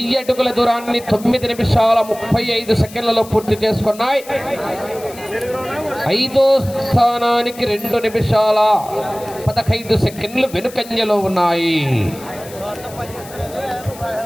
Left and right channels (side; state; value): left; noise; hiss, 18 dB below the sound